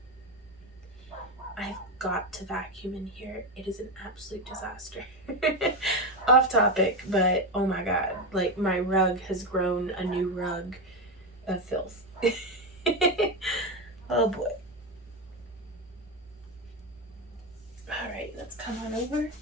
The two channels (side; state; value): both; normal; correlation 0.13